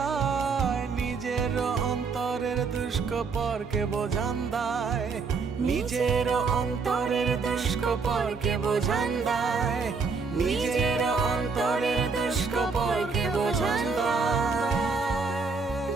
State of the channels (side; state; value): left; quieter; 4.8 dB